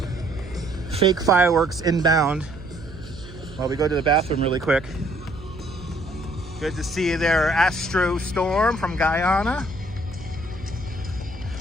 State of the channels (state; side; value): noise; right; hum, 16 dB below the sound